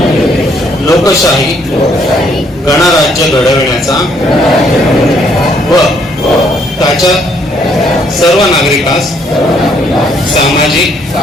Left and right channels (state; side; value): normal; both; correlation 0.68